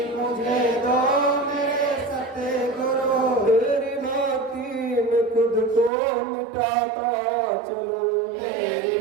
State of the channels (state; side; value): drops out; left; at 5.9 s